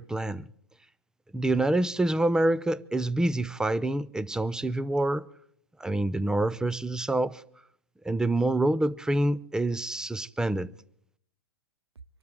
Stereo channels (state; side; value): normal; both; correlation 0.90